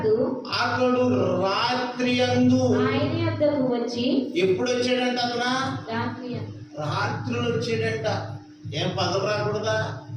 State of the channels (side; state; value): both; identical; correlation 1.00